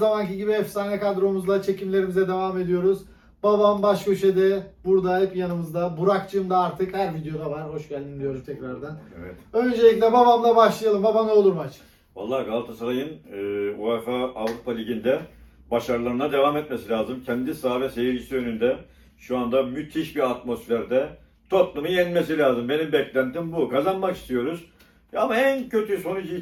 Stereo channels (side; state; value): both; identical; correlation 1.00